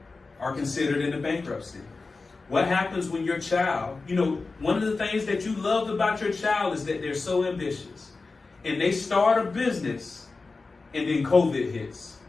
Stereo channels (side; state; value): right; quieter; 3.9 dB